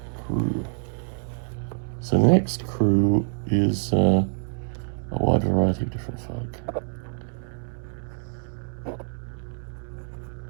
crew. So the next crew is a wide variety of different folk.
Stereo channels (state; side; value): silent; left; digital silence